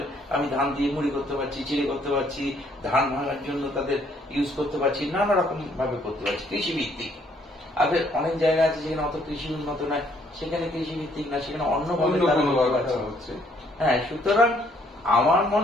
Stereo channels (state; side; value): normal; both; correlation 0.66